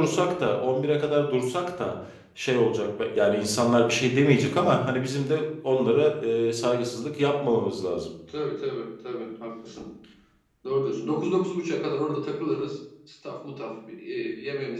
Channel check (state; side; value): identical; both; correlation 1.00